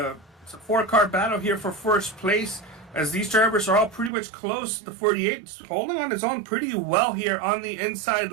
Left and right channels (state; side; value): drops out; left; at 4.1 s